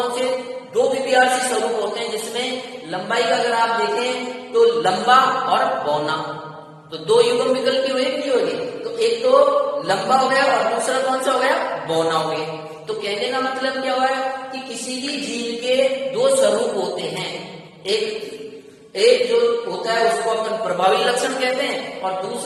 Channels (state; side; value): identical; both; correlation 1.00